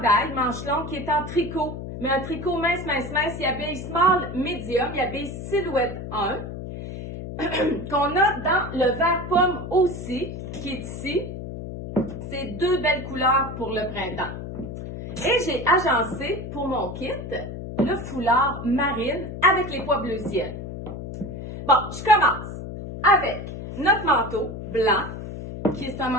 manche longue qui est en tricot, mais un tricot mince. Il habille small, medium, il habille silhouette 1, qu'on a dans le vert pomme aussi, qui est ici. C'est deux belles couleurs pour le printemps. Et j'ai agencé pour mon kit le foulard marine avec les pois bleu ciel. Bon, je commence avec notre manteau blanc, qui est un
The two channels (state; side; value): noise; left; hum, 8 dB below the sound